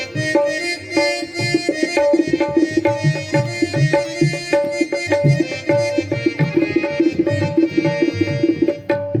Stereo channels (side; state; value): both; identical; correlation 1.00